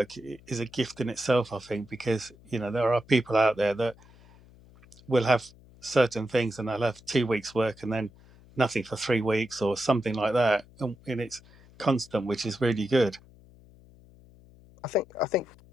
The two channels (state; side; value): noise; left; hum, 25 dB below the sound